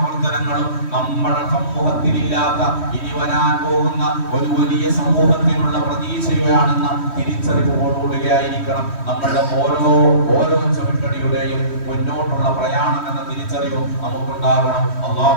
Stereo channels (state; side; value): late; right; 3.1 ms